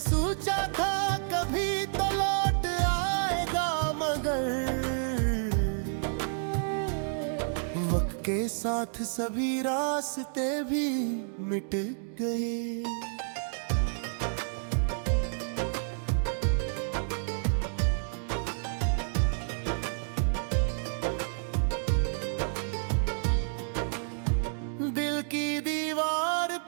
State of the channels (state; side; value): silent; left; digital silence